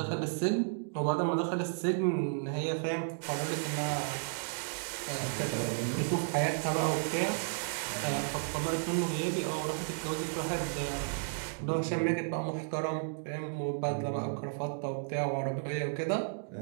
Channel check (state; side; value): silent; left; digital silence